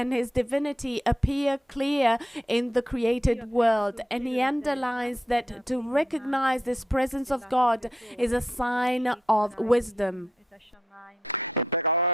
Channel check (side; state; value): both; normal; correlation 0.81